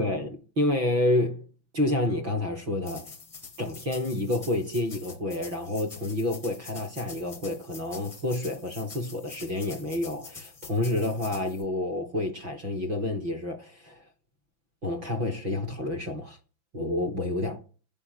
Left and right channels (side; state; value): left; late; 6.0 ms